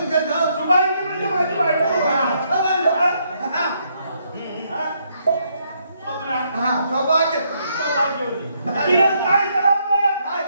का जाऊ शुभांगी म्हणजे माझी बायको. स्वप्ना सौभाग्य सौभाग्य होती. तिने काय करावं? काय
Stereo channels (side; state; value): both; inverted; correlation -0.74